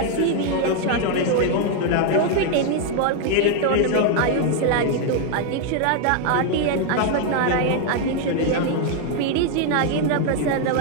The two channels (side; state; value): both; different; correlation 0.00